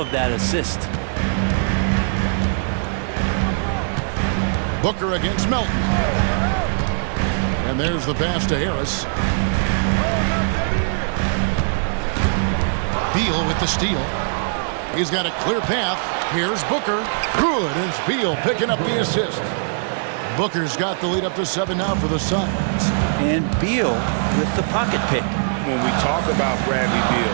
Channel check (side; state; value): left; silent; digital silence